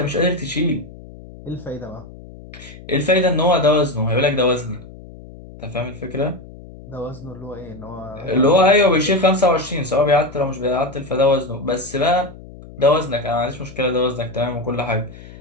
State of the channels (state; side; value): noise; left; hum, 17 dB below the sound